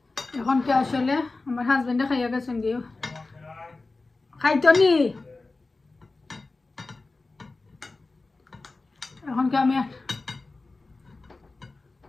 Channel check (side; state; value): right; quieter; 3.5 dB